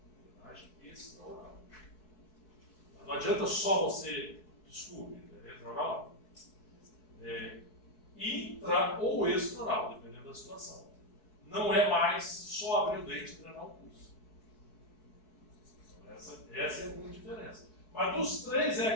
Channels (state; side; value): late; right; 4.6 ms